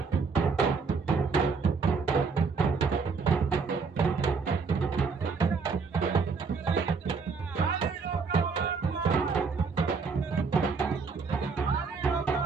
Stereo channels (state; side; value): quieter; left; 5.0 dB